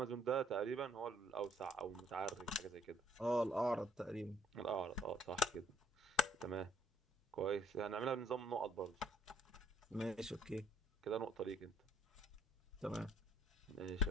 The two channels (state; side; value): normal; both; correlation 0.64